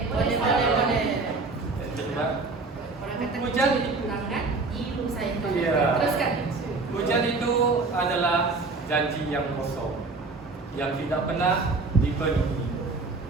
Boleh. Coba. Orang kata Hujan tangan, ilu saya. Iya. Teruskan. Hujan itu adalah janji yang kosong, yang tidak pernah dipenuhi.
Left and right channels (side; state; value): left; quieter; 3.8 dB